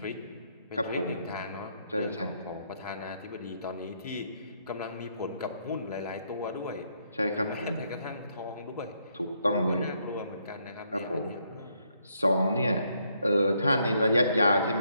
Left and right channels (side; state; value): both; inverted; correlation -0.73